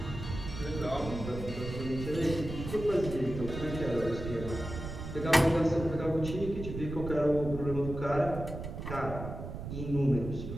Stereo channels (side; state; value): right; noise; rumble, 8 dB below the sound